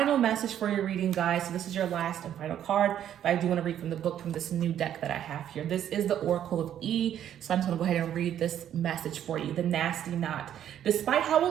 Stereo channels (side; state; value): left; quieter; 10.4 dB